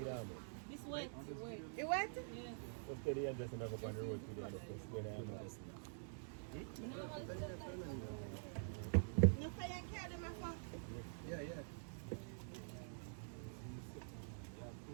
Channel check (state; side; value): silent; left; digital silence